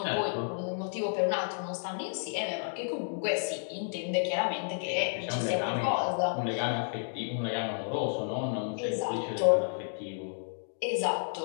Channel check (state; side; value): silent; right; digital silence